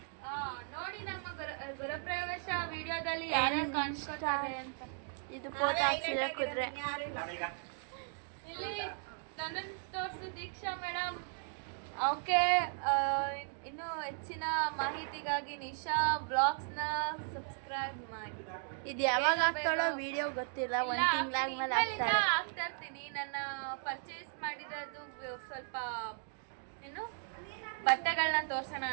ನೋಡಿ ನಮ್ಮ ಗೃಹಪ್ರವೇಶ ವಿಡಿಯೋದಲ್ಲಿ ಯಾರ್ಯಾರು ಕಾಣಿಸ್ಕೊತಾರೆ ಅಂತ. ಇದು ಫೋಟೋ ಹಾಕ್ಸಿದ್ರೆ ಕುದ್ರೆ. ನಾನೀಗ ಇಲ್ಲಿ ನನ್ನನ್ನು ತೋರಿಸಿ ದೀಕ್ಷಾ ಮೇಡಮ್. ಓಕೆ, ಇನ್ನು ಹೆಚ್ಚಿನ ಮಾಹಿತಿಗಾಗಿ ನಿಶಾ ಬ್ಲಾಗ್ಸ್ನ ಸಬ್ಸ್ಕ್ರೈಬ್ ಮಾಡಿ. ಇದು ಯಾವಾಗ ಹಾಕ್ತಾಳೋ ವಿಡಿಯೋ ಗೊತ್ತಿಲ್ಲ, ಒಂದು ತಿಂಗಳಾದ್ಮೇಲೆ ಹಾಕ್ತಾಳೆ. ಹಾಕ್ತಾ ಇರ್ತೀನಿ. ನನ್ನ ಪರ್ಚೇಸ್ ಮಾಡಿರೋದು ಸ್ವಲ್ಪ ಏನು ಬಟ್ಟೆಗಳನ್ನ ತೋರ್ಸೋಣ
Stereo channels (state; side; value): silent; left; 53 dB below the other